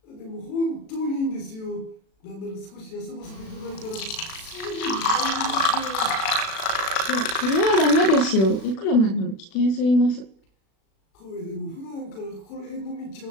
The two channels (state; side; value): late; right; 36 ms